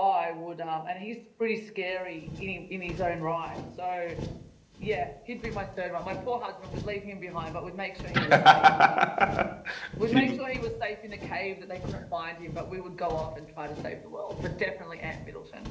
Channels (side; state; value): both; identical; correlation 1.00